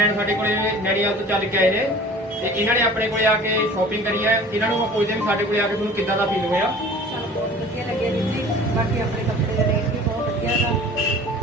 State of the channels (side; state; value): both; normal; correlation 0.45